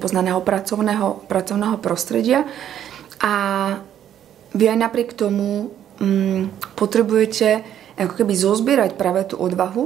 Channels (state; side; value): quieter; left; 10.4 dB